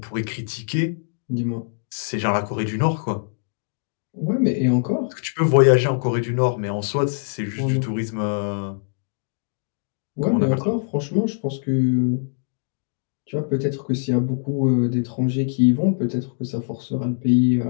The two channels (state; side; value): silent; right; digital silence